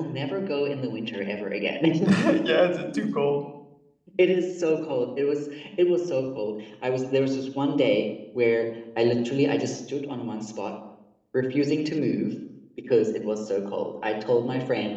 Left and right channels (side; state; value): both; identical; correlation 1.00